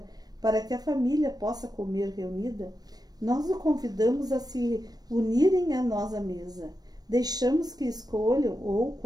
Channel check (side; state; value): left; late; 0.19 ms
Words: para que a família possa comer reunida, nós o convidamos a se unirem a nós à mesa. Deixamos que escolham, ou,